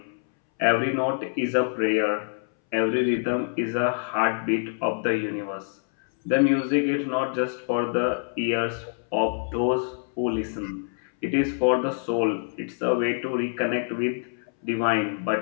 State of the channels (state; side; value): silent; right; 61 dB below the other